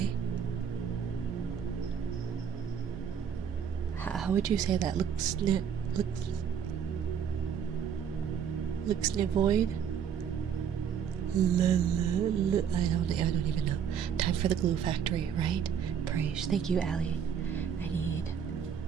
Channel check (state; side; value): quieter; left; 7.9 dB